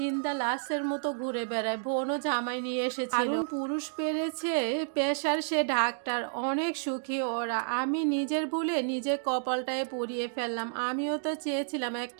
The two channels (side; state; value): left; silent; digital silence